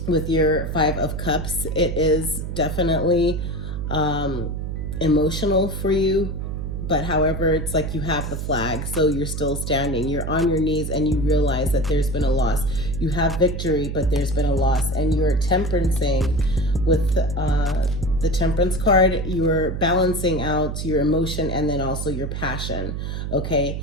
with your Five of Cups. It is definitely emotional for you, but however, it's like you have the flag, so you're still standing. You're on your knees and you realize that there's been a loss. You have victory, but there's been a loss, and you're temperancing with the Temperance card. You're balancing out your emotion and then also your passion, okay?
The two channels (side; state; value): right; noise; hum, 4 dB below the sound